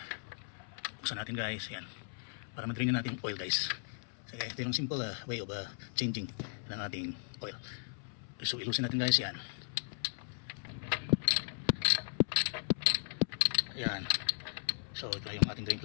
Buksan natin guys. Yan. Para ma-drain na natin yung oil guys. Sige, ito yung simple way of changing ng ating oil. So, ilusin natin guys yan. Ayan. So, ito yung ating drain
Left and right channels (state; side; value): silent; right; 53 dB below the other